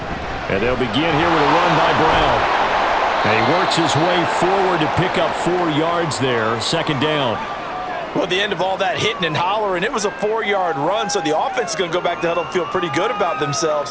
And they'll begin here with a run by Brown. And he works his way forward to pick up 4 yards there, 2nd down. Well, at the end of all that hitting and hollering, it was a 4-yard run, so the offense is going to go back to huddle and feel pretty good about themselves.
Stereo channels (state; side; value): identical; both; correlation 1.00